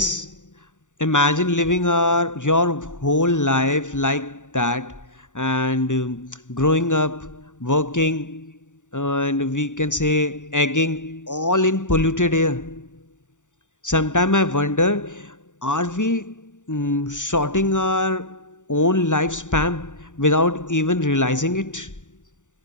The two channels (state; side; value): late; right; 0.86 ms